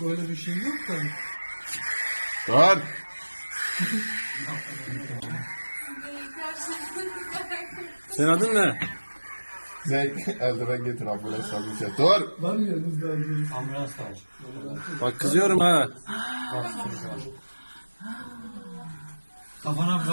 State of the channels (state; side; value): inverted; both; correlation -1.00